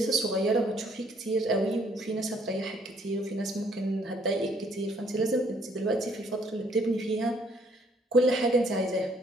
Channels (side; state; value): both; normal; correlation 0.65